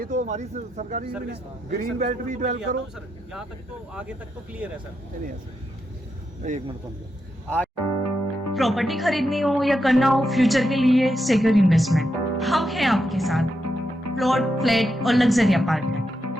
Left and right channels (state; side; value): normal; both; correlation 0.84